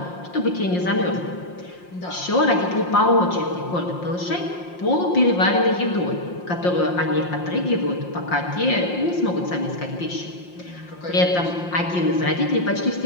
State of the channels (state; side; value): late; right; 5.7 ms